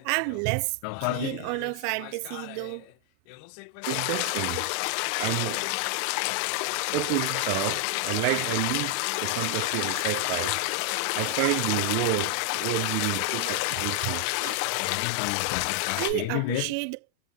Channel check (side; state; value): both; different; correlation 0.00